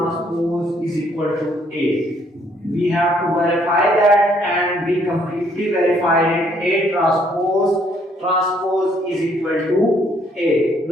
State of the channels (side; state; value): both; normal; correlation 0.66